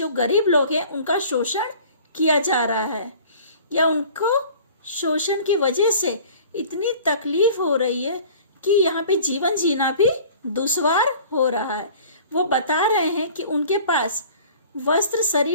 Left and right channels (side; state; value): both; inverted; correlation -0.46